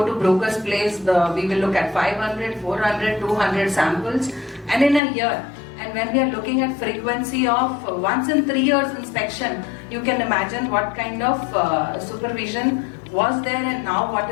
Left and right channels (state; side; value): drops out; right; at 5.0 s